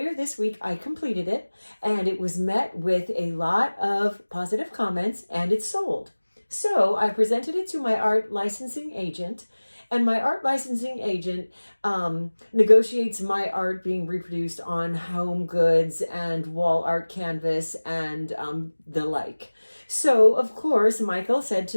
this week I completed it, and it was met with a lot of positive comments, and it sold. So I presented it to my art licensing agent, and my art licensing agent negotiates my art being reproduced on home goods and wall art canvas and the like. So, of course, Michael said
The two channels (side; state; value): both; inverted; correlation -1.00